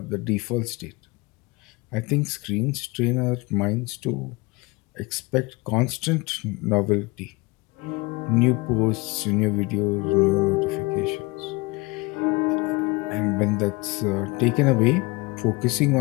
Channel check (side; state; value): right; quieter; 24.4 dB